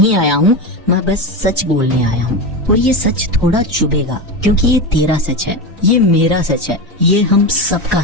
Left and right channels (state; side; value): normal; both; correlation 0.19